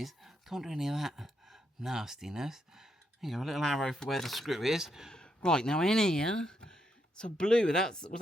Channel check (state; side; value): normal; both; correlation 0.79